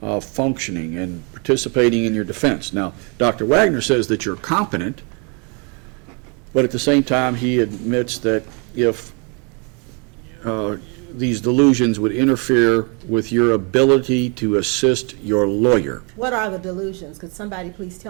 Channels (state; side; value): quieter; left; 34.2 dB